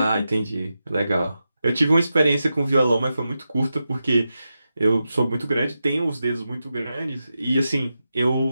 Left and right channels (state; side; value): inverted; both; correlation -0.90